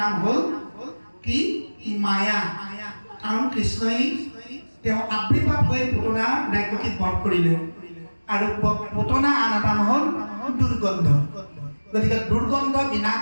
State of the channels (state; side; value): inverted; both; correlation -1.00